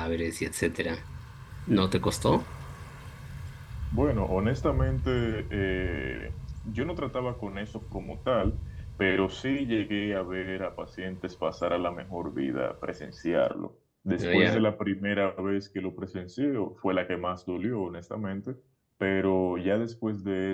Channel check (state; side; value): identical; both; correlation 1.00